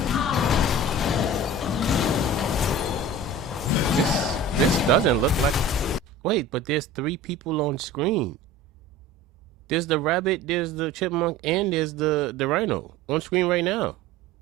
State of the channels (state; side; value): normal; both; correlation 0.38